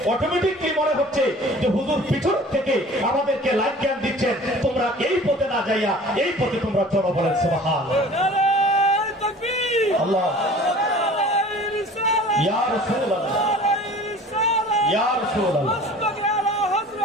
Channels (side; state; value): both; normal; correlation 0.45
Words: অটোমেটিকলি মনে হচ্ছে যে হুজুর পিছন থেকে আমাদেরকে লাইফ জ্ঞান দিচ্ছেন, তোমরা এই পথে না যাইয়া এই পথে তোমরা চলো। বলেন সুবহানাল্লাহ। আল্লাহ ইয়া রাসূলুল্লাহ, ইয়া রাসূলুল্লাহ,